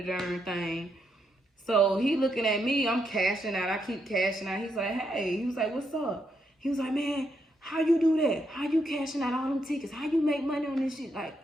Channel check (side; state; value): both; normal; correlation 0.79